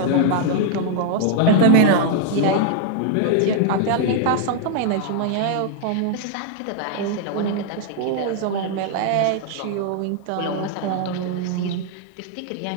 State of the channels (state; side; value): different; both; correlation -0.01